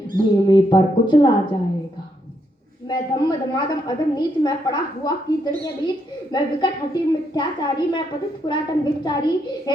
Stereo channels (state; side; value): normal; both; correlation 0.77